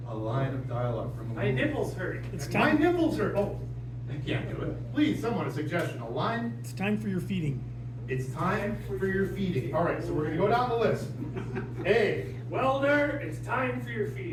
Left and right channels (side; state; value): both; identical; correlation 1.00